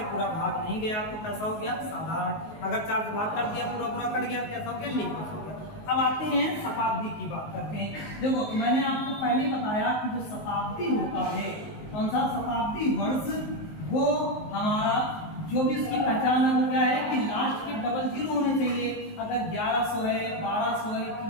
पूरा भाग नहीं गया तो कैसा हो गया? साधारण। अगर 4 से भाग कर दिया, पूरा पूरा कट गया तो कैसा हो गया? लीप वर्ष हो गया। अब आते हैं शताब्दी की बात करते हैं। देखो मैंने आपको पहले बताया कि जो शताब्दी होता है, कौन सा शताब्दी वर्ष, वो हमारा जो भी उसकी पहचान है वो क्या है कि लास्ट के डबल जीरो होने चाहिए। अगर 1100 है, 1200 है,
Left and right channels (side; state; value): right; late; 19 ms